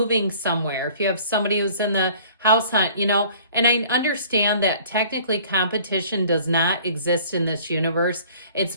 somewhere. If you have somebody who's in the house hunt, and I understand that technically competition does not exist in this universe. It's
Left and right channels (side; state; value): both; inverted; correlation -0.51